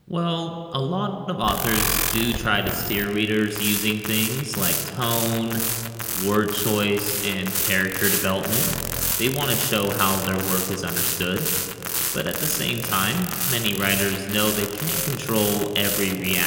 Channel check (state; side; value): identical; both; correlation 1.00